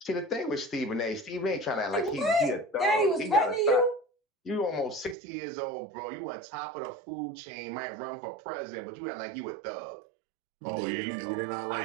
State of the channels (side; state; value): left; drops out; at 5.2 s